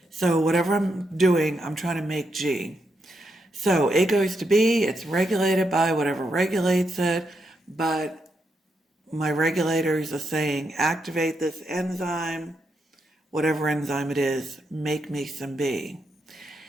So whatever I'm doing, I'm trying to make G. So A goes to B, it's regulated by whatever regulates it, but my regulators are saying activate this enzyme, whatever enzyme it is, make me some B.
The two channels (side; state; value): both; normal; correlation 0.82